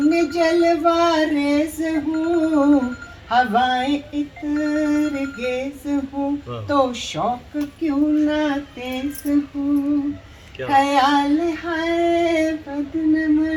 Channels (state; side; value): identical; both; correlation 1.00